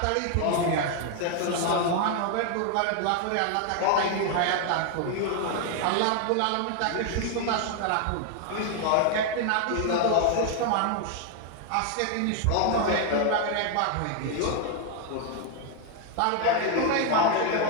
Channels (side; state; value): both; different; correlation 0.00